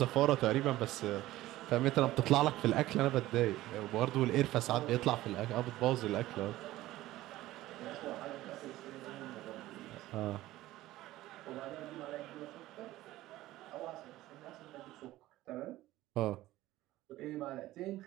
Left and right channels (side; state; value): left; quieter; 16.2 dB